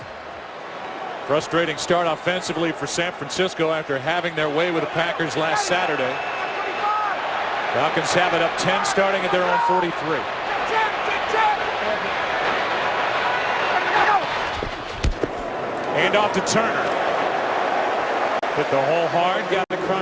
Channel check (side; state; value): both; identical; correlation 1.00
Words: Frustrating start offensively for San Francisco after having their way with the Packers last Saturday. Falcons have it up 10 starting at their own 43. Hand off to Turner. Hit the hole hard, got